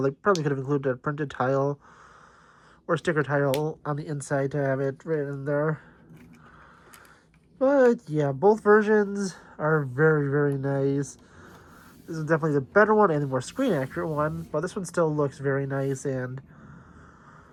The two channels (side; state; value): both; identical; correlation 1.00